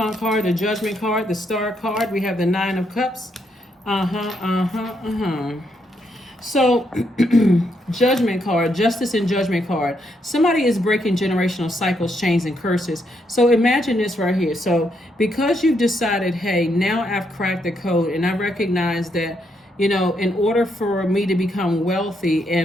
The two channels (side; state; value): both; normal; correlation 0.77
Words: card, the Judgment card, the Star card. We have the Nine of Cups. So, Judgment card, Justice and Judgment card. Somebody is breaking generational cycles, chains, and curses. So imagine this right here. So because you've decided, hey, now I've cracked the code, and I recognize that, in order for me to become wealthy